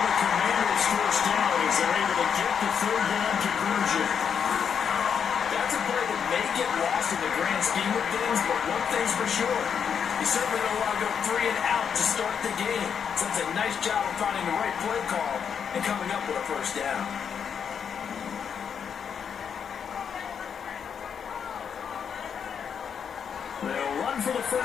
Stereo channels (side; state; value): right; quieter; 7.3 dB